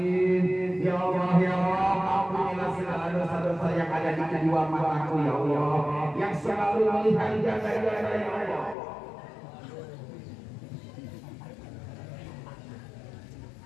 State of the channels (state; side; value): drops out; right; at 8.8 s